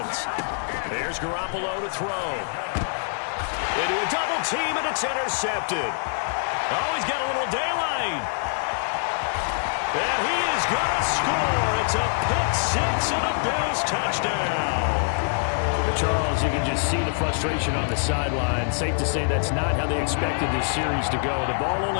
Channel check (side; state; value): right; silent; digital silence